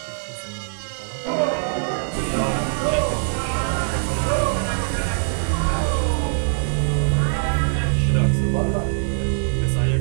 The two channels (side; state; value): left; silent; 64 dB below the other